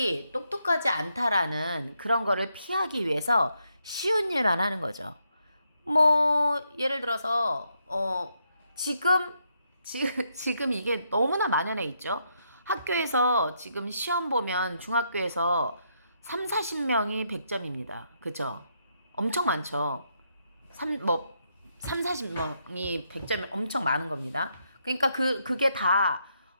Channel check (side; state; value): both; inverted; correlation -0.78